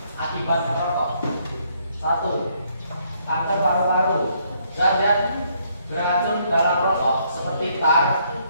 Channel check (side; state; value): both; inverted; correlation -0.70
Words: akibat merokok. 1. Kanker paru-paru. Zat beracun dalam rokok seperti tar